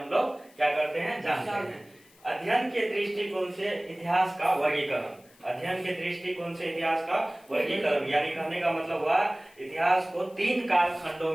लोग क्या करते हैं, जानते हैं। अध्ययन के दृष्टिकोण से इतिहास का वर्गीकरण। अध्ययन के दृष्टिकोण से इतिहास का वर्गीकरण यानी कहने का मतलब हुआ इतिहास को 3 कालखंडों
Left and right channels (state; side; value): noise; left; hiss, 28 dB below the sound